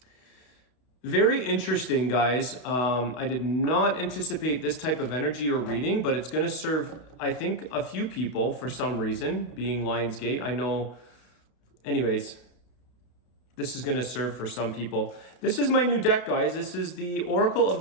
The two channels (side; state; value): right; late; 32 ms